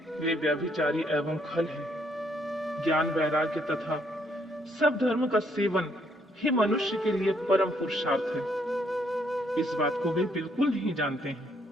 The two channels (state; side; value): normal; both; correlation 0.70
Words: वे व्यभिचारी एवं खल हैं। ज्ञान वैराग्य तथा सब धर्म का सेवन ही मनुष्य के लिए परम पुरुषार्थ है। इस बात को वे बिल्कुल नहीं जानते